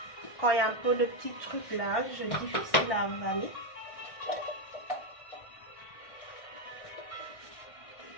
quand il y a un peu de petits trucs là, je difficile à avaler.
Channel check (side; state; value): right; late; 1.6 ms